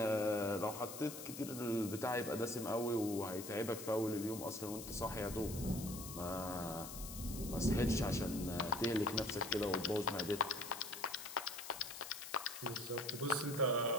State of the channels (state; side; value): noise; left; hiss, 10 dB below the sound